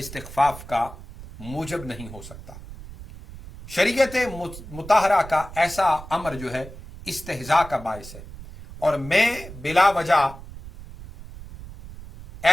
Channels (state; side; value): noise; right; rumble, 15 dB below the sound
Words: کا موجب نہیں ہو سکتا۔ شریعت مطہرہ کا ایسا امر جو ہے استہزاء کا باعث ہے، اور میں بلا وجہ